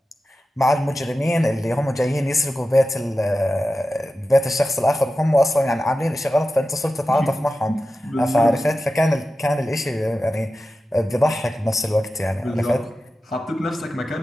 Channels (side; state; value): both; normal; correlation 0.93